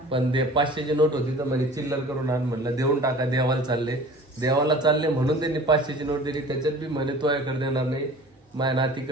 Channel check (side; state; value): both; normal; correlation 0.44